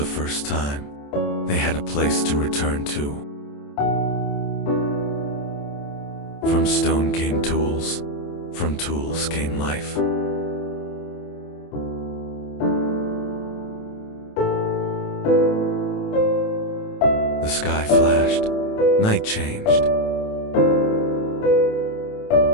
first time, they had a place to return to. From stone came tools. From tools came life. The sky flashed. Night changed.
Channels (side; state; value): right; late; 28 ms